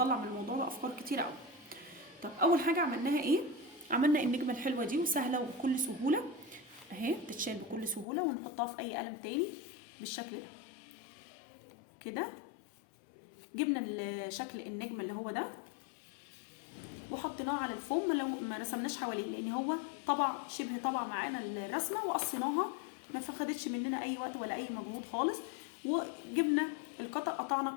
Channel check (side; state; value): right; drops out; at 8.1 s